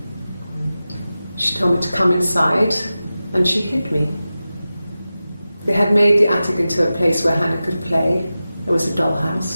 She told me to come inside and she hid me. They had made the attic into a place where Hannah could play. There was a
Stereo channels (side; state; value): both; inverted; correlation -0.94